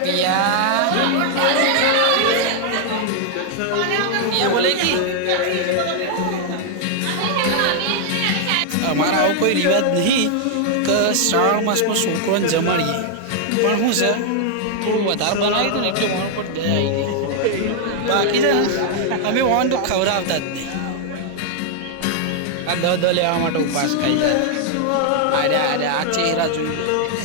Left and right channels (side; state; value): both; different; correlation 0.00